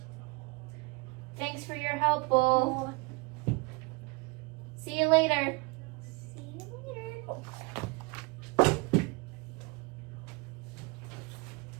Thanks for your help, Bull. See you later. See you later.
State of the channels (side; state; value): left; quieter; 27.2 dB